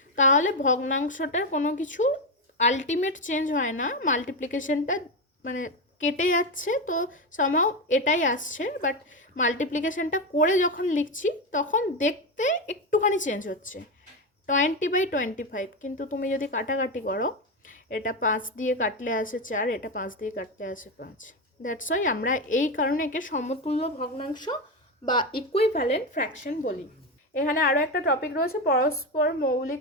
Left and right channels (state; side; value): normal; both; correlation 0.13